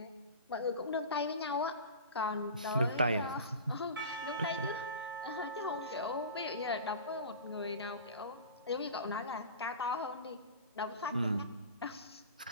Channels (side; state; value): both; inverted; correlation -0.34